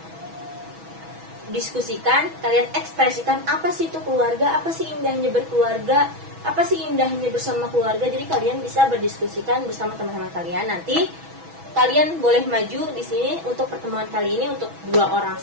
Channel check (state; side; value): late; left; 6.1 ms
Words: diskusikan, kalian ekspresikan apa sih itu keluarga, apa sih indahnya berkeluarga, apa sih indahnya bersama keluarga. Jadi kalian bisa berdiskusikan bersama teman-teman kalian. Nanti kalian boleh maju di sini untuk pertemuan kali ini untuk 2 orang